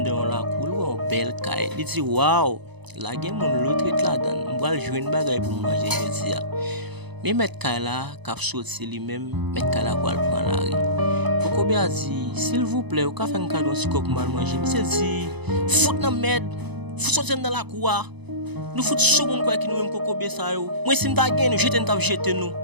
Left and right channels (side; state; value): left; late; 0.99 ms